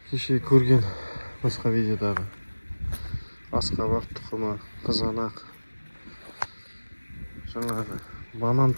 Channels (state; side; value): inverted; both; correlation -1.00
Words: Кеше көрген басқа видеодағы асқабақ тұқымы, қызанақ, жаңағы банан